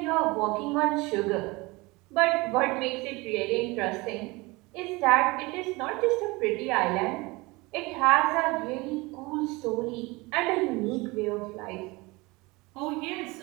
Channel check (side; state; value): left; quieter; 23.8 dB